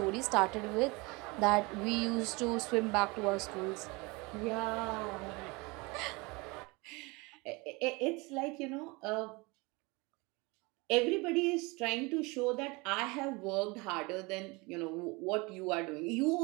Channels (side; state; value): left; quieter; 26.1 dB